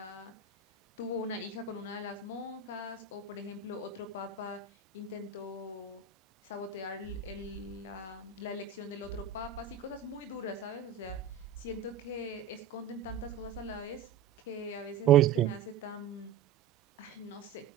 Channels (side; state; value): left; quieter; 6.9 dB